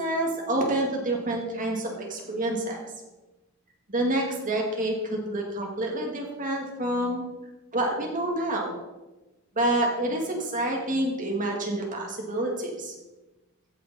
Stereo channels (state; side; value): normal; both; correlation 0.19